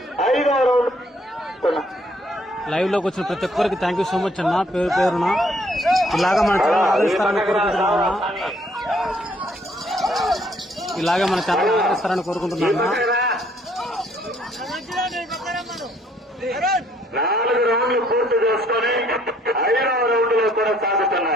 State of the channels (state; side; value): normal; both; correlation 0.65